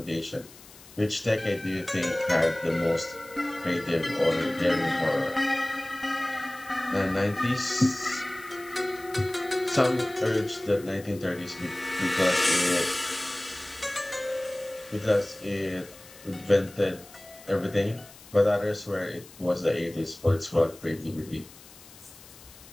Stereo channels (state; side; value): noise; left; hiss, 21 dB below the sound